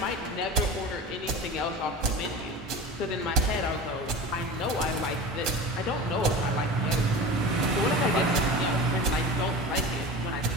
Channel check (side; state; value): both; normal; correlation 0.32